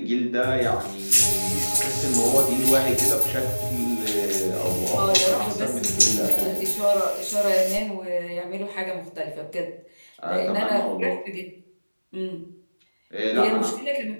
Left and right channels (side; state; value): both; inverted; correlation -1.00